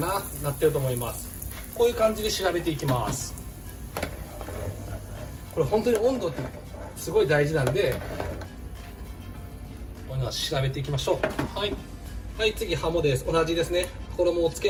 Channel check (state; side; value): identical; both; correlation 1.00